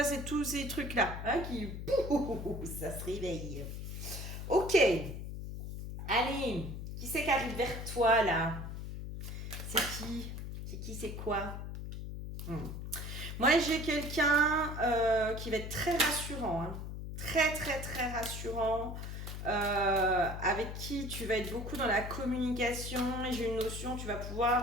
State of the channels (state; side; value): noise; left; hum, 7 dB below the sound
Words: c'est tous ces trucs-là hein, qui... Pouh, ça se réveille. Ok, allez, qui c'est qui arrive vers toi là? C'est qui? C'est qui, c'est quoi? Hmm. Moi, j'ai quelqu'un qui va être très rassurant, hein. Très, très, très rassurant. Avec qui tu vas être beaucoup dans la communication et j'ai une notion, tu vas